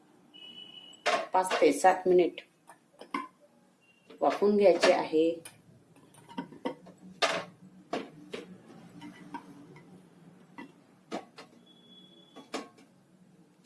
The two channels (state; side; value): identical; both; correlation 1.00